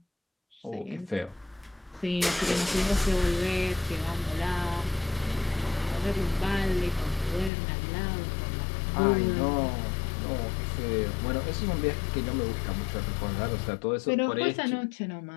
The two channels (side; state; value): right; drops out; at 7.5 s